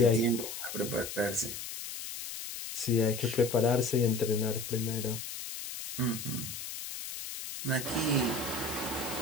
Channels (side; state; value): left; noise; hiss, 8 dB below the sound